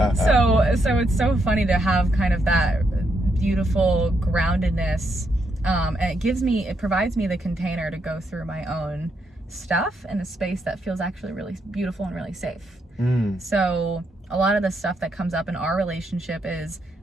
so it's so funny to have kind of that beautiful groundedness, and it provides me the container to go through my own stuff in a space that feels actually really beautiful and really safe. So a lot of the stuff that comes up in our relationship is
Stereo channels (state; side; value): normal; both; correlation 0.79